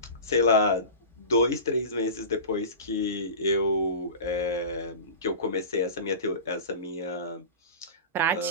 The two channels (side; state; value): both; inverted; correlation -0.31